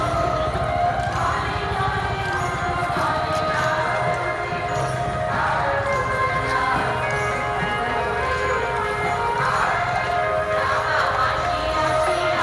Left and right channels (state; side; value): identical; both; correlation 1.00